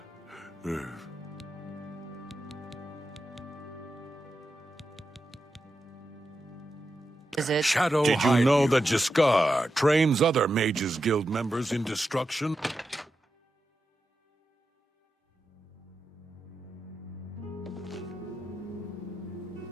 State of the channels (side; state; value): both; normal; correlation 0.89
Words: Is it? Shadow Did you know that Jaskar trains other Mages Guild members in destruction?